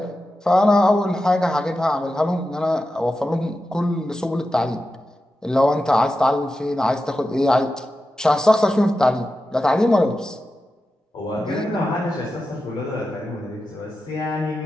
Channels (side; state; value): both; normal; correlation 0.91